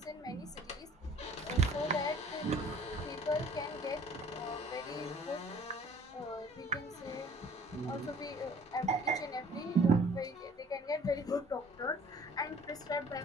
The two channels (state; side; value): normal; both; correlation 0.52